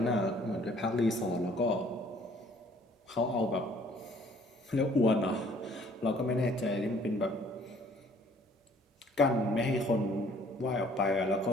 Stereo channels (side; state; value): both; normal; correlation 0.58